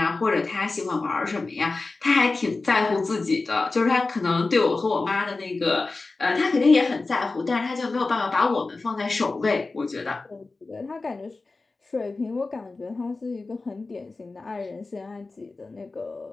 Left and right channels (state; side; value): quieter; right; 3.6 dB